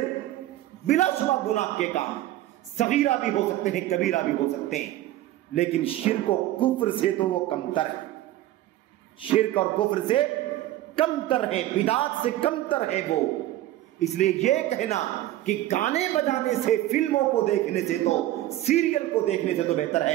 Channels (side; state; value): left; quieter; 14.6 dB